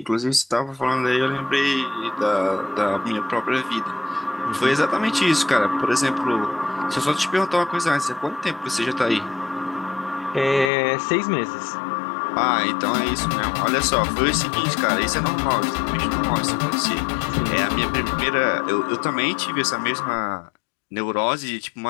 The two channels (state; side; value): drops out; right; at 10.7 s